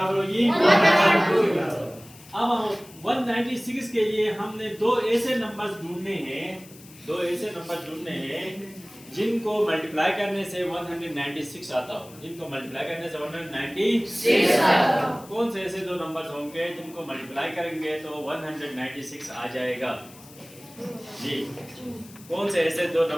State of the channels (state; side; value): noise; left; hiss, 21 dB below the sound